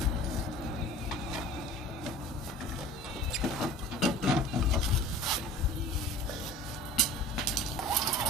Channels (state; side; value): normal; both; correlation 0.42